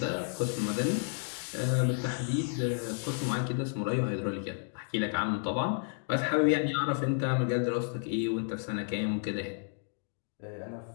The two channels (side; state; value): right; silent; 57 dB below the other